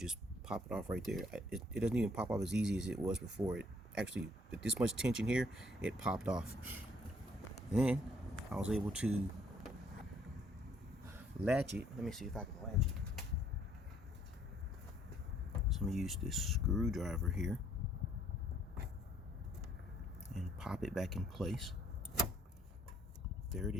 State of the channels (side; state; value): both; normal; correlation 0.64